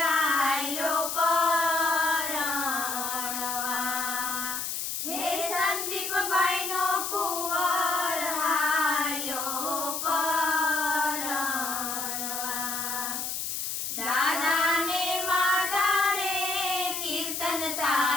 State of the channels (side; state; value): left; noise; hiss, 3 dB below the sound